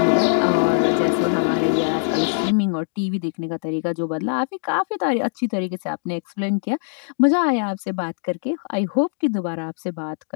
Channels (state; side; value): silent; right; digital silence